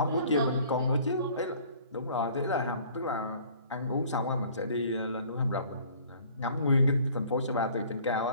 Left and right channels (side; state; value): both; inverted; correlation -0.53